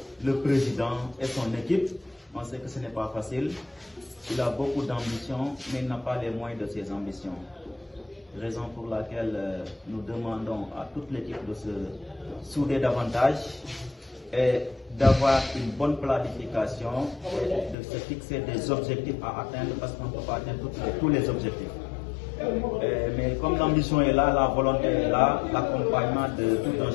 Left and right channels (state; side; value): drops out; right; at 17.8 s